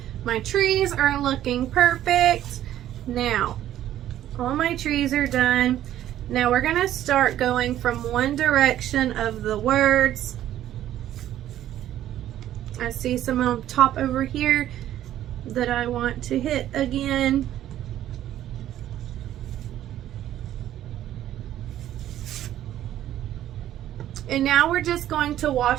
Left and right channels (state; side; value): quieter; left; 12.3 dB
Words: My trees are looking perfect. Now, all my trees are done. Now we're gonna start going from one direction of the words. I see some on top over here that I want to hit again. And now we're just going to